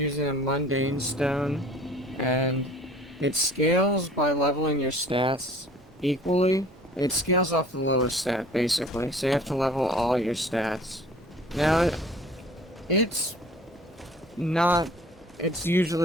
a mundane stone, and it scales by leveling your stats equally. It scales off the lowest stat, basically, so you have to level all your stats. Now, it's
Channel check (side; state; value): both; normal; correlation 0.48